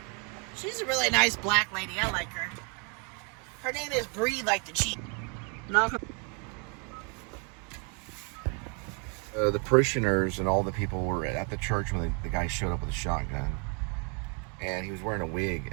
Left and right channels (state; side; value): quieter; left; 35.1 dB